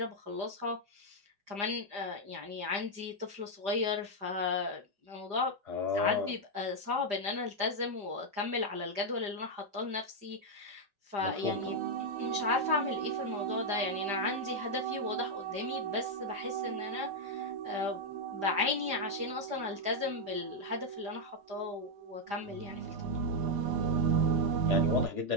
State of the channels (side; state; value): left; late; 5.0 ms